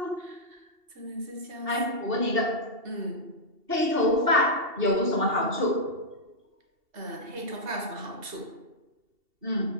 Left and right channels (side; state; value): left; late; 2.7 ms